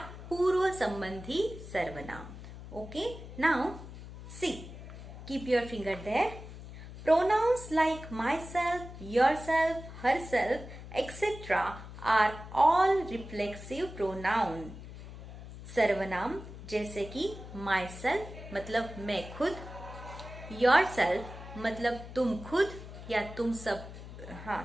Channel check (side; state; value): left; noise; hum, 13 dB below the sound